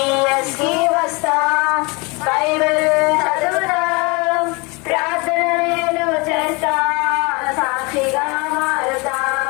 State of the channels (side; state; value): right; quieter; 28.1 dB